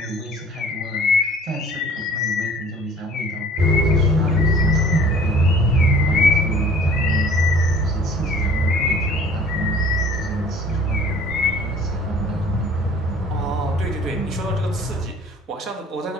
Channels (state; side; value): normal; both; correlation 0.51